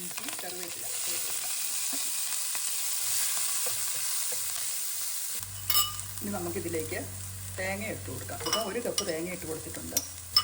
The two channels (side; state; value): both; identical; correlation 1.00